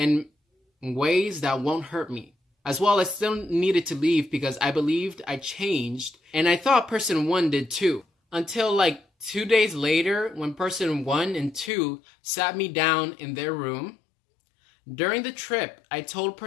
ways that won't hurt me. As well, I still needed to leave because I believed I changed, and I thought person one did too. Until like 2 days later, when person one and two sat me down in their room. During the trip, I told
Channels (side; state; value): right; drops out; at 11.7 s